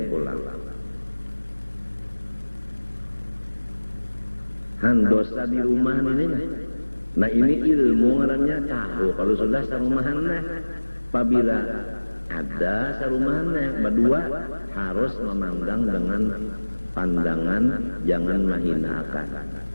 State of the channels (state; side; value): inverted; both; correlation -1.00